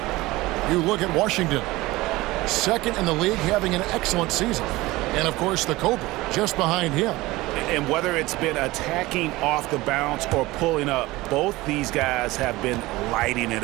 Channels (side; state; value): left; quieter; 19.7 dB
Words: You look at Washington. Second in the league, having an excellent season. And, of course, the Cobra just behind him. And whether it's been attacking off the bounce or pulling up, both these guys have been lighting it